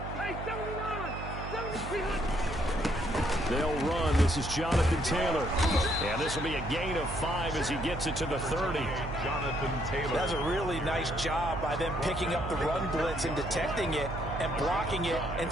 They'll run. This is Jonathan Taylor. And this will be a gain of 5 as he gets it to the 30. Jonathan Taylor. That's a really nice job by them picking up the run blitz and detecting it and blocking it and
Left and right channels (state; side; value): noise; right; hum, 7 dB below the sound